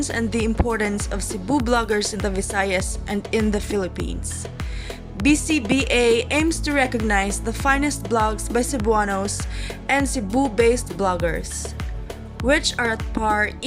and the importance of Cebu bloggers in the Visayas and in the Philippines. BCBA aims to recognize the finest blogs by Cebuanos and Cebu-based bloggers, which are at par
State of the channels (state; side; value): identical; both; correlation 1.00